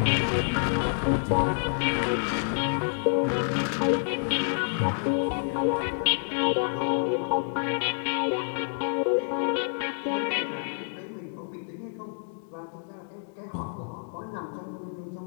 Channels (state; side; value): silent; right; digital silence